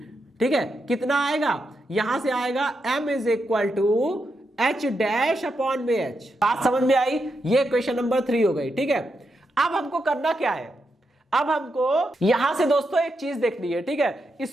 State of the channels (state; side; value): normal; both; correlation 0.84